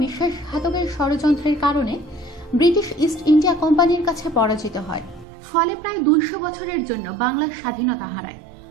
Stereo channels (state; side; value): drops out; left; at 5.2 s